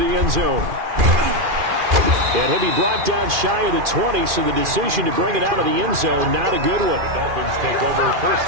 end zone. And he'll be brought down shy of the 20, so the decision to bring it out of the end zone, not a good one. The Dolphins take over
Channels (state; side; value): late; left; 2.4 ms